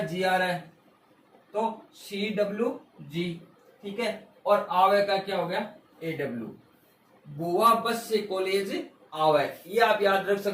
जी आर है, तो सी डब्ल्यू जी। ठीक है, और आवे का क्या हो गया ए डब्ल्यू, बुआ बस से कॉलेज आवे, ये आप याद रख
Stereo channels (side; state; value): both; identical; correlation 1.00